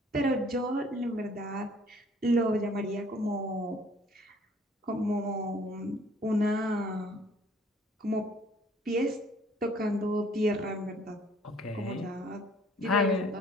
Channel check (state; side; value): normal; both; correlation 0.57